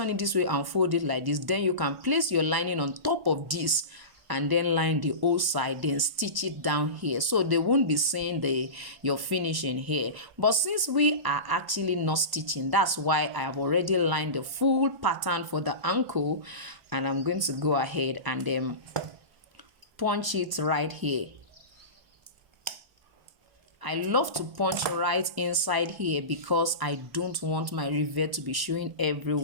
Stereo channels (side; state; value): left; late; 1.0 ms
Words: it this way and fold it like this, then you can place your lining on top of this and then line the whole side, then stitch it down here, so they won't be seeing your finishing here. But since we are actually not stitching, that's why I have already lined the full pattern for the ankle, and I'm going to go ahead and then punch it right here. I love to punch right inside here because I don't want my rivet to be showing